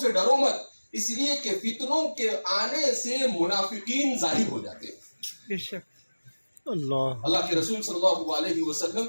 ڈرو مت، اس لیے کہ فتنوں کے آنے سے منافقین ظاہر ہو جاتے ہیں. اللہ کے رسول صلی اللہ علیہ وسلم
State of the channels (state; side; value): inverted; both; correlation -1.00